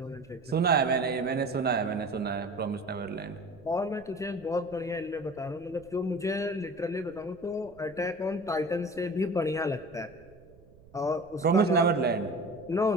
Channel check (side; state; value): right; noise; rumble, 25 dB below the sound